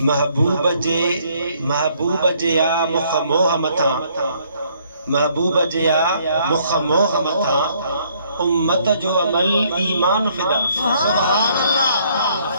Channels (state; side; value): inverted; both; correlation -0.66